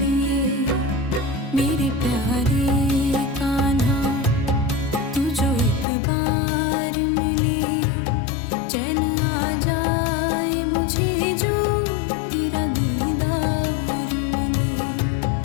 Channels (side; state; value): right; drops out; at 5.9 s